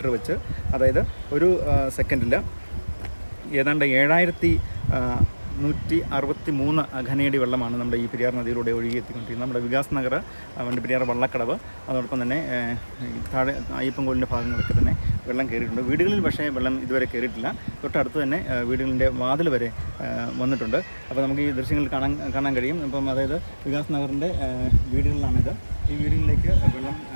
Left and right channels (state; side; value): inverted; both; correlation -1.00